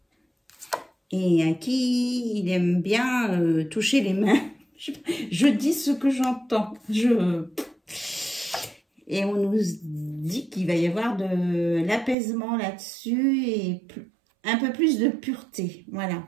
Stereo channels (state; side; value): drops out; left; at 12.2 s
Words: et à qui il aime bien toucher les mains. Je dis ce que j'entends. Et on nous dit qu'il va y avoir de l'apaisement là-dessus et un peu plus de pureté. Voilà.